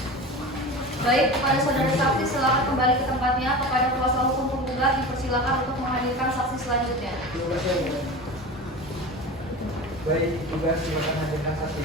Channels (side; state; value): both; normal; correlation 0.31